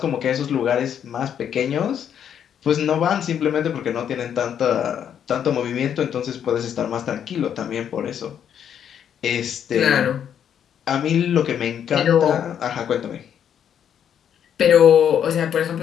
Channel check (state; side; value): quieter; right; 8.9 dB